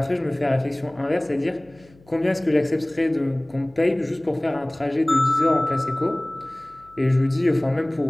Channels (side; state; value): left; noise; hum, 28 dB below the sound